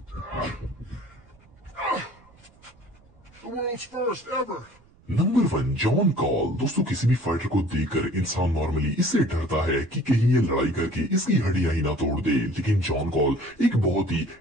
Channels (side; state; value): right; noise; rumble, 29 dB below the sound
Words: The world's first ever. Number 1, John call. दोस्तों किसी भी फाइटर को देखकर इंसान नॉर्मली इससे डरता है कि कहीं ये लड़ाई करके इसकी हड्डियां ही ना तोड़ दे, लेकिन जॉन कॉल एक बहुत ही